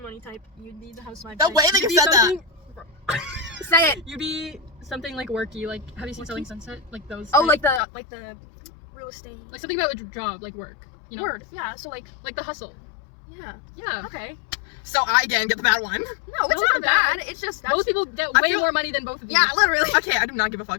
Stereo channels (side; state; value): right; drops out; at 7.8 s